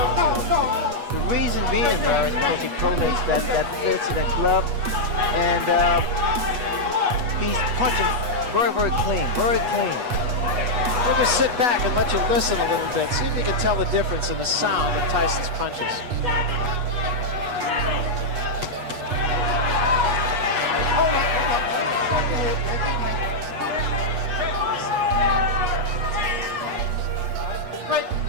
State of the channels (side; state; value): left; late; 8.2 ms